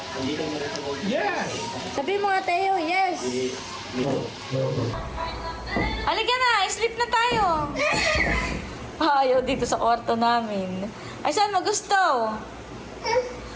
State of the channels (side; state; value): both; identical; correlation 1.00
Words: Yes. Sabi mo nga, Tayo, yes! Halika na, sleep na tayo! Ayaw dito sa kwarto namin. Ay, saan mo gusto?